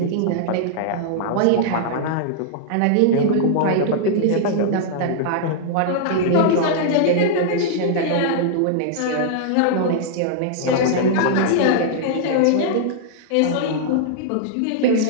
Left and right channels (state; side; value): different; both; correlation -0.01